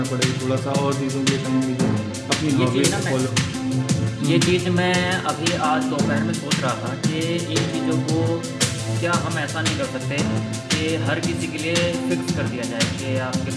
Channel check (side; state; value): both; identical; correlation 1.00